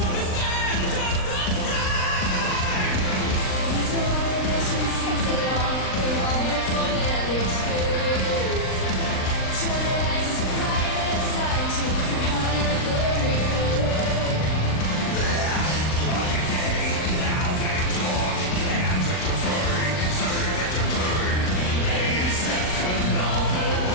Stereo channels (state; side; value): late; right; 39 ms